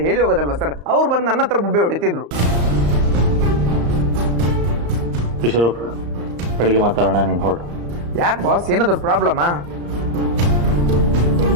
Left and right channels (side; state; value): left; late; 35 ms